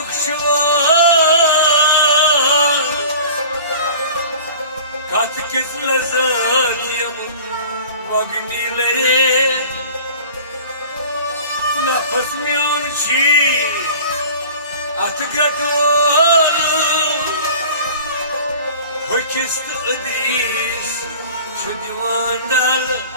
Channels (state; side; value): inverted; both; correlation -0.42